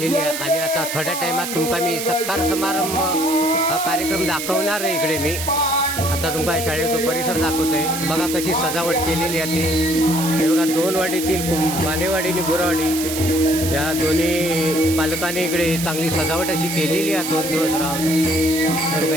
आहे आणि आता थोड्या टाइमात तुमका मी सत्कार समारंभ हा कार्यक्रम दाखवणार आहे। इकडे मी आता तुमका शाळेचा परिसर दाखवतोय। बघा कशी सजावट केलेली आहे ती। हे बघा दोन वाडीतील मानेवाडी आणि गुरवाडी या दोन्ही पालकांनी इकडे चांगली सजावट अशी केलेली आहे। 2 दिवस राहून तर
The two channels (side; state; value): right; noise; hiss, 6 dB below the sound